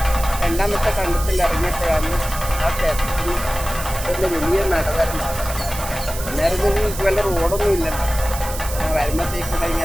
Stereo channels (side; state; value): right; noise; hiss, 10 dB below the sound